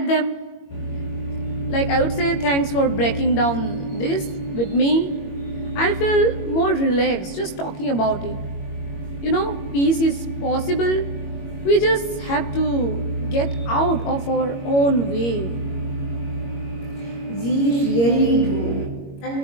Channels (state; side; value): late; right; 21 ms